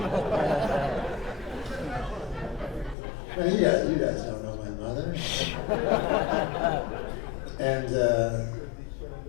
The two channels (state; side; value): drops out; right; at 3.0 s